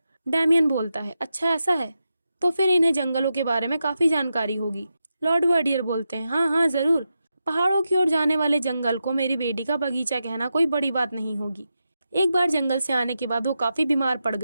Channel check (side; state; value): both; inverted; correlation -0.88